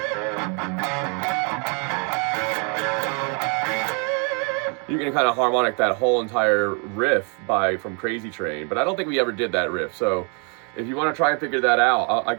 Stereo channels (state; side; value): quieter; left; 37.4 dB